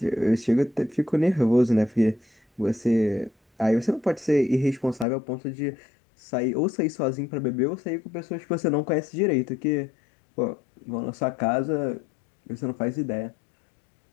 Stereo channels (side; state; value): right; drops out; at 5.1 s